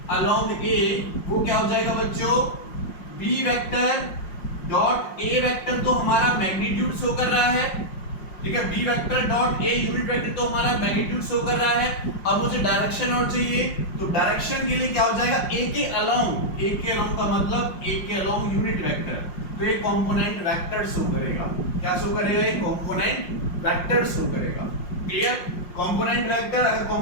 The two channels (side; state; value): right; late; 5.6 ms